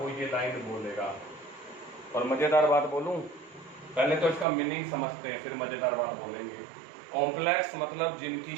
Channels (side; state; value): left; drops out; at 4.5 s